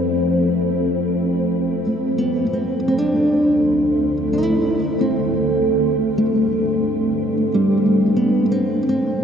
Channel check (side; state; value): both; normal; correlation 0.67